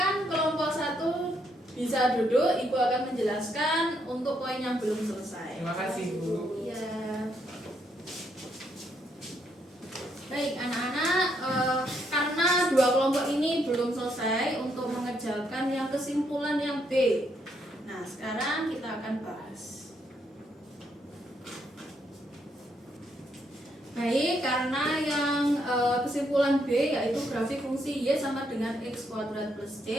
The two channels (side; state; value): both; normal; correlation 0.75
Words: kelompok 1 bisa duduk. Ibu akan menjelaskan untuk poin yang belum selesai. Terima kasih, Bu. Ya. Baik, anak-anak, karena 2 kelompok ini belum selesai untuk mengerjakan yang kesimpulan yang B. Nah, sekarang kita akan bahas. Baik, karena yang kesimpulan B yaitu grafik fungsi Y sama dengan X kuadrat plus